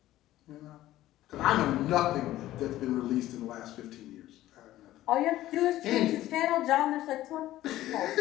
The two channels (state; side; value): quieter; right; 14.8 dB